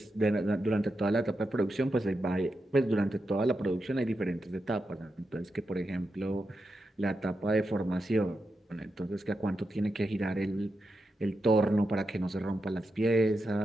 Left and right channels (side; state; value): both; normal; correlation 0.87